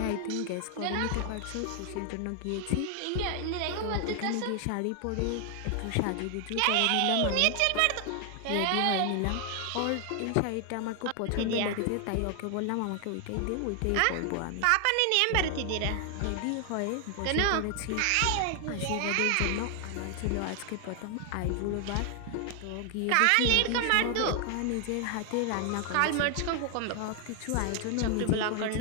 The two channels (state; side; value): different; both; correlation 0.00